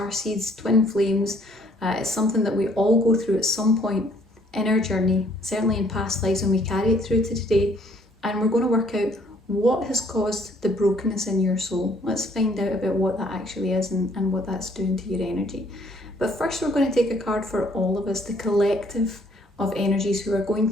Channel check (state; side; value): normal; both; correlation 0.63